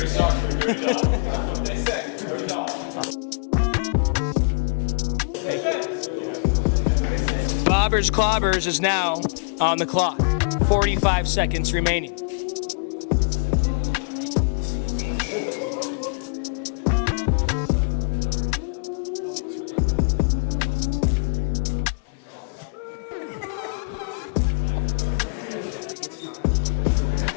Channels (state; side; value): silent; right; 63 dB below the other